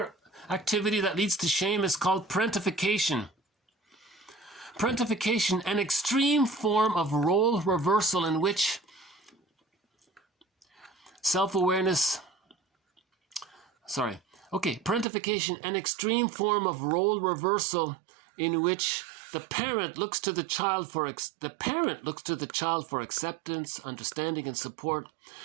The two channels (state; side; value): drops out; left; at 15.1 s